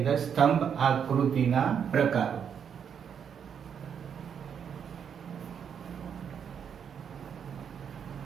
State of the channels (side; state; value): left; quieter; 7.7 dB